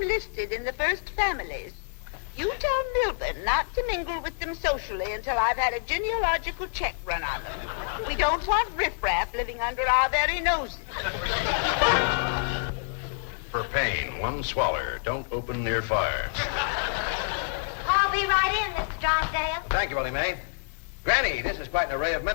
listed in the first families. You tell Milburn not to mingle with them socially until I've had a genealogical check run on them. We don't want riffraff living under our very noses. For pain, one swaller. Don't open near fire. I'll be right in, Mr. Drysdale. Thank you, Elly Mae. Granny, this is quite an array of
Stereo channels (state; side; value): silent; right; digital silence